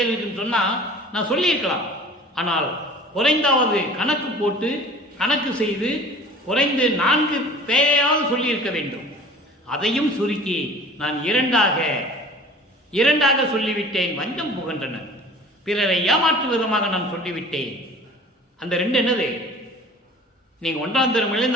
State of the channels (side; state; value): both; normal; correlation 0.45